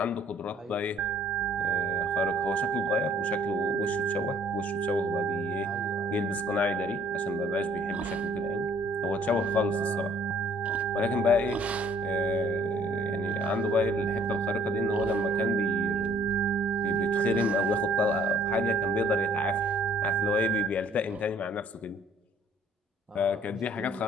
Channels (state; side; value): normal; both; correlation 0.59